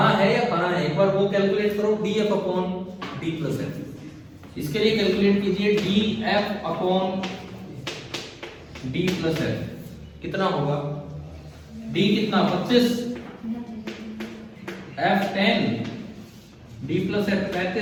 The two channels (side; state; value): both; identical; correlation 1.00